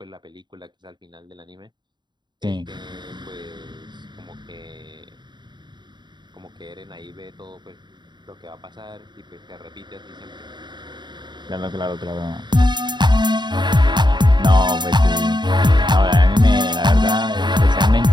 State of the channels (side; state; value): left; late; 0.22 ms